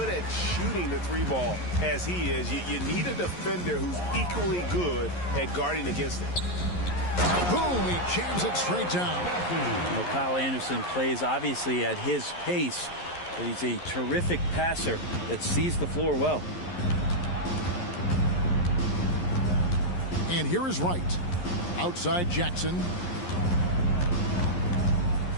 at shooting the 3-ball as he is, you need a defender who's equally good at guarding against it. Boom, he jams it straight down. You know, Kyle Anderson plays obviously at his pace, but he's a terrific passer that sees the floor well. And here is Wright. Outside Jackson.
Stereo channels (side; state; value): right; late; 11 ms